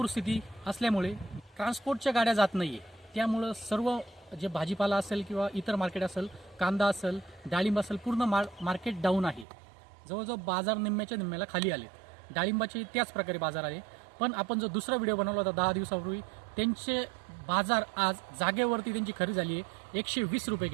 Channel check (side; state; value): left; drops out; at 9.5 s